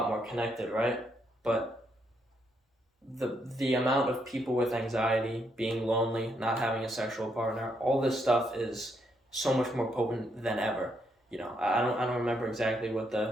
more connected, right? But the amount of people with anxiety, being lonely, not having a sexual partner, all this stuff is so much more potent than ever. I don't remember exactly what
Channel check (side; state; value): both; normal; correlation 0.76